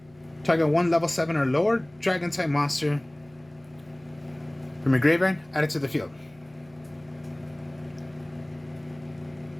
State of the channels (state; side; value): noise; left; hum, 28 dB below the sound